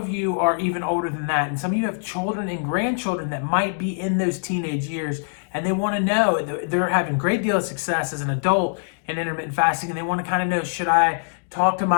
you are even older than that. And some of you have children and grandchildren that might be in those teenage years. And they want to know, they're having a great deal of success as an adult in intermittent fasting. And they want to kind of know, should I talk to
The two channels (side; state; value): right; silent; digital silence